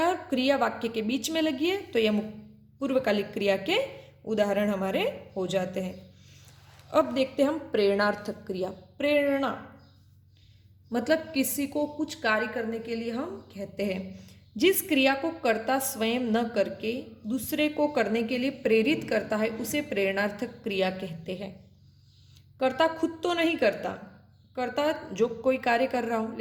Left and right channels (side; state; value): both; identical; correlation 1.00